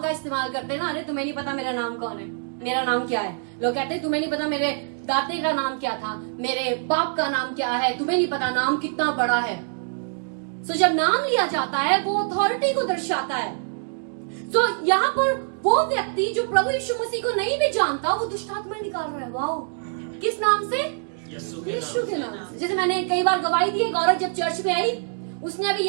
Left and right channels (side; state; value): left; silent; digital silence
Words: इस्तेमाल करते हैं ना, अरे तुम्हें नहीं पता मेरा नाम कौन है, मेरा नाम क्या है। लोग कहते हैं तुम्हें नहीं पता मेरे दादे का नाम क्या था, मेरे बाप का नाम क्या है, तुम्हें नहीं पता नाम कितना बड़ा है। सो जब नाम लिया जाता है वो अथॉरिटी को दर्शाता है। सो यहाँ पर वो व्यक्ति जो प्रभु यीशु मसीह को नहीं भी जानता, वो दुष्ट आत्मा निकाल रहा है। वाओ, किस नाम से? यीशु के नाम से। जैसे मैंने कई बार गवाही दी, एक औरत जब चर्च में आई, उसने अभी